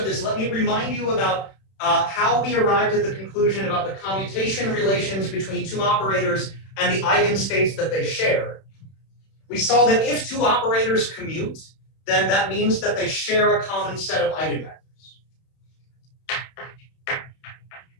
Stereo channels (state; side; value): late; right; 31 ms